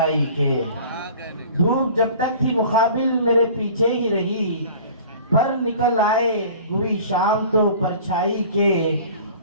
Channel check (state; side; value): inverted; both; correlation -0.44